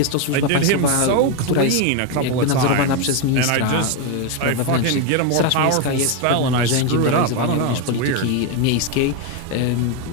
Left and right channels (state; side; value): different; both; correlation 0.02